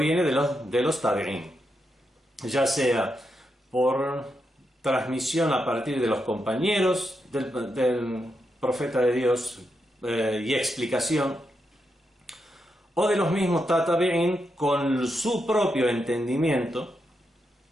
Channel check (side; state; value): both; normal; correlation 0.84